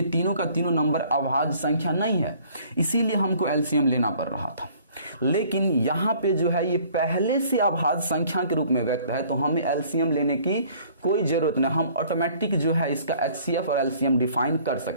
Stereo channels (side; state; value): both; inverted; correlation -0.56